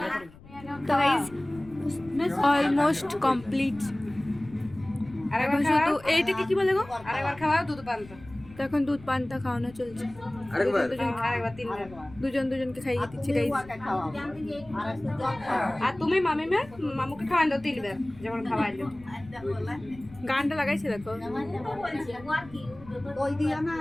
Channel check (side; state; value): left; noise; rumble, 20 dB below the sound